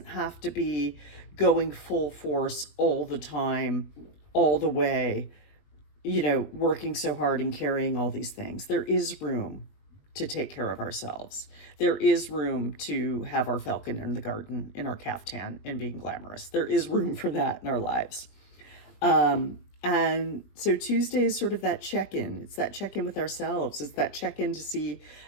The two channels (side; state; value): right; late; 20 ms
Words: have to be going full force all the time, all the way, working so hard and carrying all these things. There is room to take care of ourselves. There is room to have our falcon in the garden in our caftan and being glamorous. There is room for that in our lives. And so Tuesday is sort of that check-in. It's that check-in with ourselves. It's that check-in to see